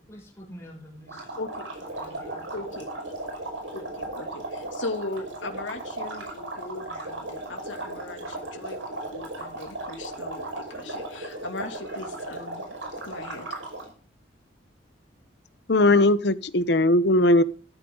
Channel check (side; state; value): both; normal; correlation 0.18